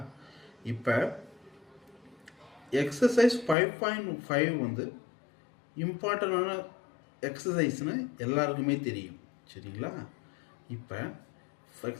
இப்போ எக்ஸசைஸ் 5.5 இம்பார்ட்டண்டான எக்ஸசைஸ்னு எல்லாருக்குமே தெரியும். சரிங்களா? இப்போ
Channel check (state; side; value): drops out; right; at 3.6 s